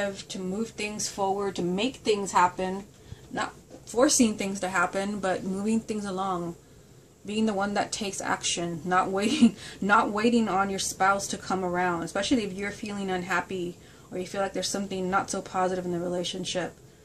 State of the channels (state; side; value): identical; both; correlation 1.00